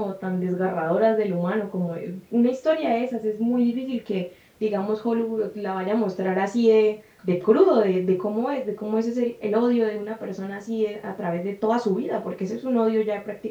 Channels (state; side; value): identical; both; correlation 1.00